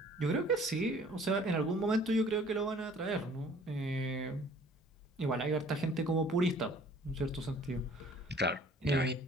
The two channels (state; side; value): normal; both; correlation 0.53